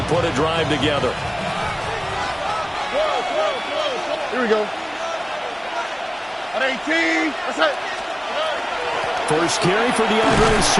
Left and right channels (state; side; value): identical; both; correlation 1.00